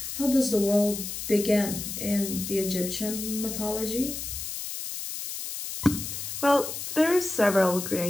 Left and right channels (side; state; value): left; noise; hiss, 6 dB below the sound